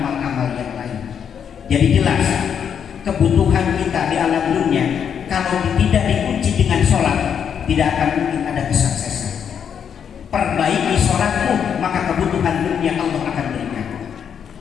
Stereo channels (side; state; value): right; quieter; 7.9 dB